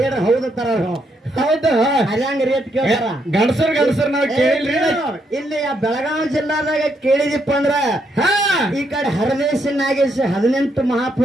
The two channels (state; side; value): normal; both; correlation 0.76